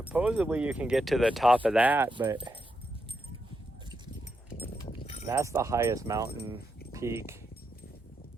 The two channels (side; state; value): both; normal; correlation 0.83